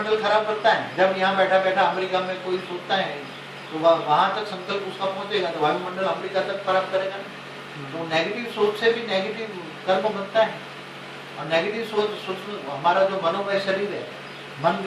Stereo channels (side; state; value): both; identical; correlation 1.00